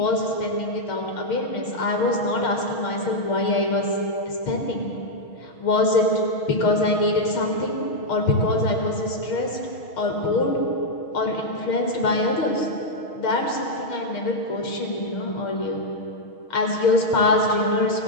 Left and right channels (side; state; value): right; late; 6.5 ms